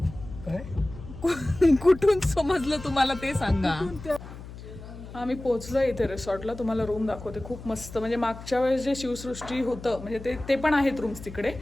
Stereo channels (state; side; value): noise; left; hum, 14 dB below the sound